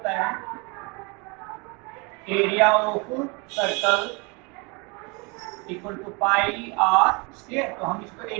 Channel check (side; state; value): left; quieter; 29.9 dB